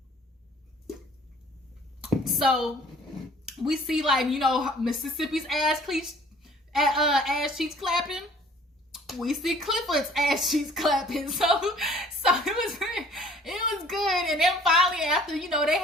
So we see, like, you know, Mississippi's ass cheeks clapping. We see Clifford's ass cheeks clapping. So it was good. And then finally, after, you know, they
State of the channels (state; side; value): normal; both; correlation 0.53